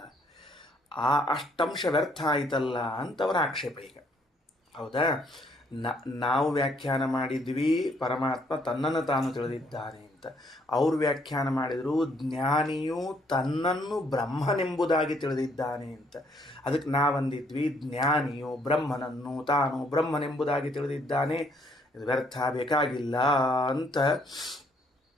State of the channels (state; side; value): normal; both; correlation 0.67